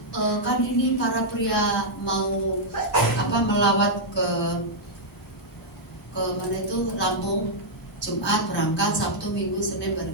kan ini para pria mau melawat ke mana itu Lampung, Jumat berangkat, Sabtu, Minggu, Senin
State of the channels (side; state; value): both; normal; correlation -0.06